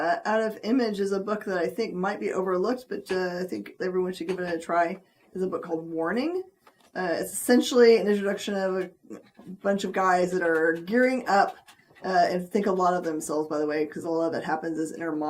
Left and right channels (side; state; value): both; identical; correlation 1.00